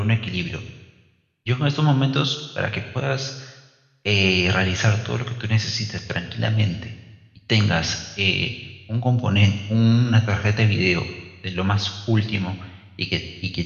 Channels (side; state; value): both; identical; correlation 1.00